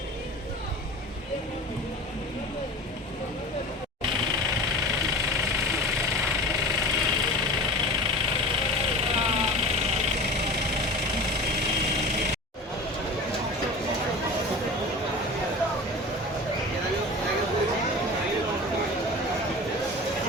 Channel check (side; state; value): both; normal; correlation 0.35